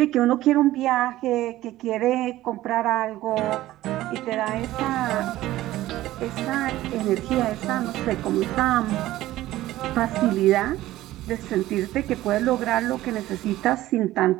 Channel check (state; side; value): quieter; left; 15.6 dB